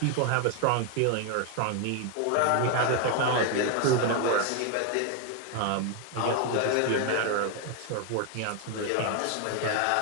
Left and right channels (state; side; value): different; both; correlation 0.01